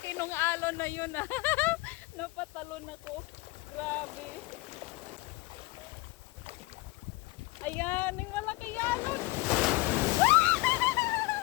ng alon na yun, ah. Napatalon ako. Grabe. Ayan, yung malaki alon.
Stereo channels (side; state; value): right; quieter; 21.9 dB